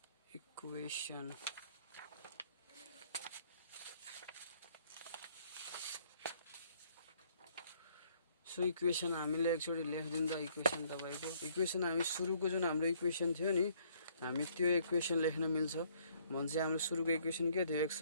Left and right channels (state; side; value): inverted; both; correlation -0.64